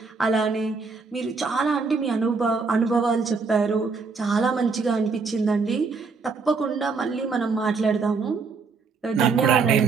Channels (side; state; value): left; quieter; 4.6 dB